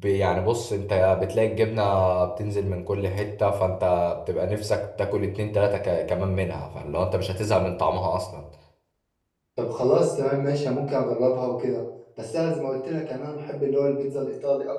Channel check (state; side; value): identical; both; correlation 1.00